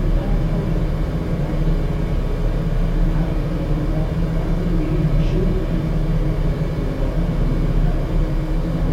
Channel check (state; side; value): identical; both; correlation 1.00